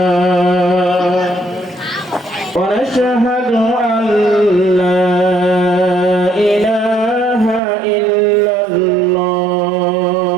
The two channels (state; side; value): drops out; left; at 7.6 s